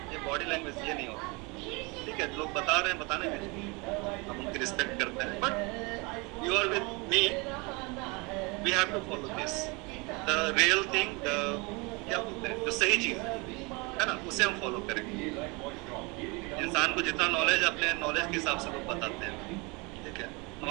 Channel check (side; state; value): left; quieter; 28.1 dB